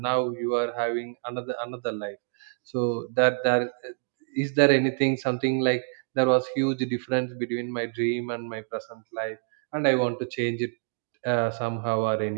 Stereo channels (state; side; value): silent; left; digital silence